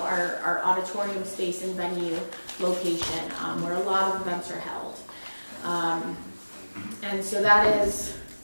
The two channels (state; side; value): inverted; both; correlation -1.00